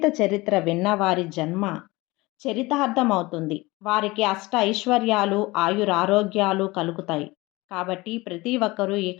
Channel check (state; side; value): quieter; right; 21.6 dB